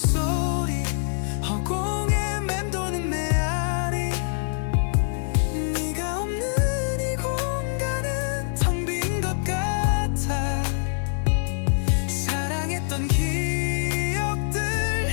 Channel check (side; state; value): right; silent; digital silence